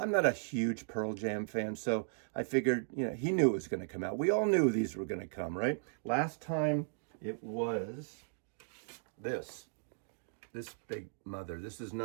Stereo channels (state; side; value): silent; left; digital silence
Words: a huge Pearl Jam fan, so I figured, he knew it was going to come out. We all knew these were going to come, right? Last time it was this big mother. This is